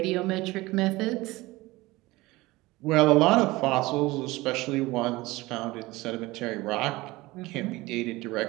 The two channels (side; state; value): left; quieter; 20.3 dB